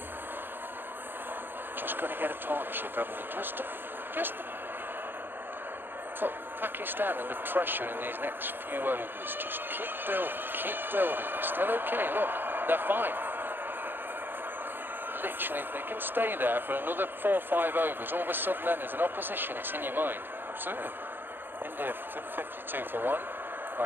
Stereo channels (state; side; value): late; left; 0.098 ms